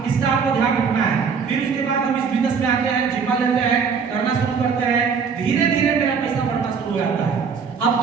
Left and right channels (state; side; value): quieter; left; 6.0 dB